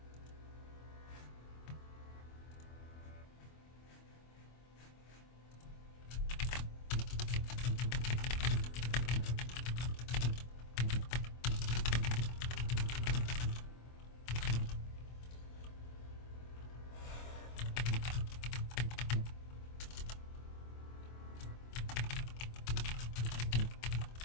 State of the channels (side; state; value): right; late; 25 ms